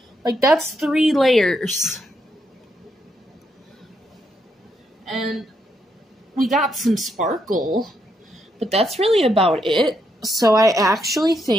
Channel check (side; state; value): both; normal; correlation 0.78